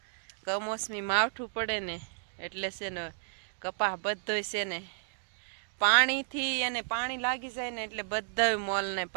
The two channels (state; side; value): silent; left; digital silence